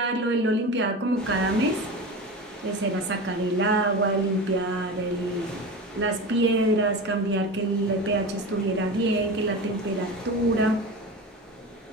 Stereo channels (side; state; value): both; normal; correlation 0.28